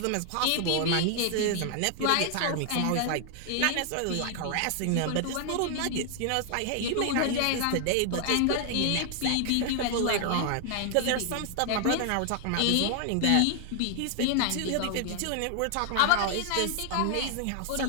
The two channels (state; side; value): different; both; correlation 0.00